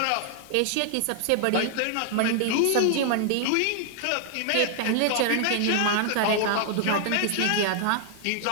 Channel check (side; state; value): both; different; correlation 0.00